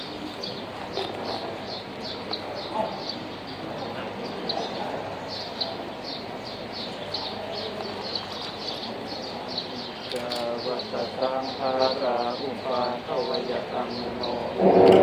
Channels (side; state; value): both; identical; correlation 1.00